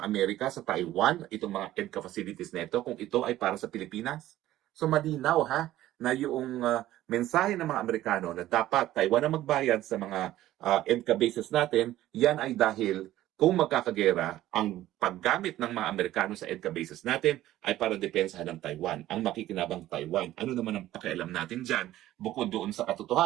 Amerika sa Taiwan itong mga EDCA facilities nito kung ito ay para sa Pilipinas? So malinaw ha na yung mensahe ng mga Amerikano na dapat Taiwan ang magbayad sa mga EDCA bases natin, yan ay dahil kung magkakagera, ang paggamit ng mga Amerikano sa EDCA bases natin ay para depensahan ng Taiwan, ang makikinabang Taiwan. Ano naman ang pakialam natin dyan, bukod doon sa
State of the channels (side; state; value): left; quieter; 14.4 dB